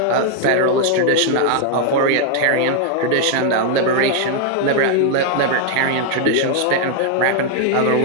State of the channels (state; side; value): different; both; correlation 0.00